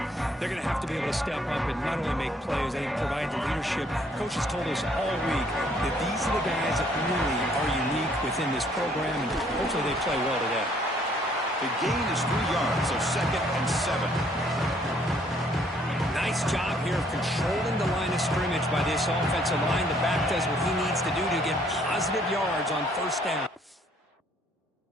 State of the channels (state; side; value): normal; both; correlation 0.64